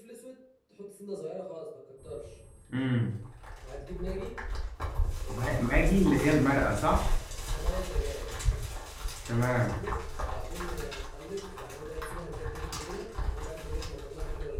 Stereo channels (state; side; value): identical; both; correlation 1.00